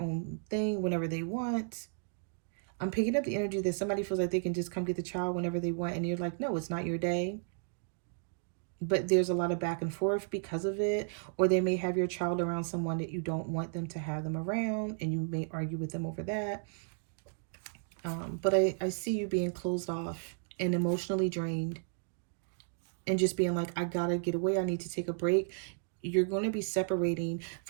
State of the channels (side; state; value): left; silent; digital silence